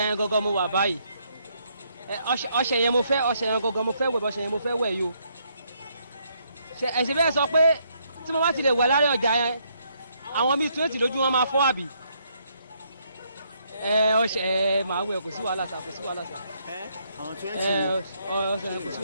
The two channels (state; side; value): inverted; both; correlation -0.73